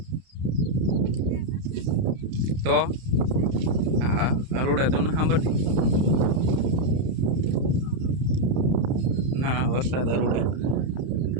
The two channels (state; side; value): late; left; 31 ms